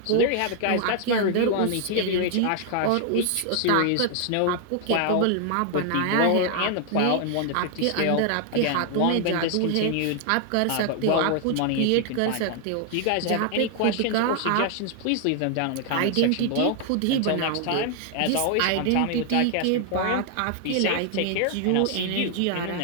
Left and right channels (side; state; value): both; different; correlation 0.00